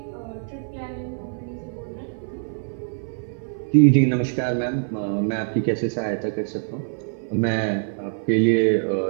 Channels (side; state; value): left; silent; 58 dB below the other